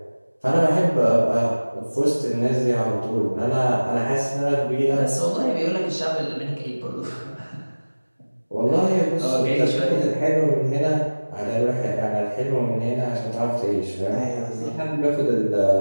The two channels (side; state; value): both; inverted; correlation -1.00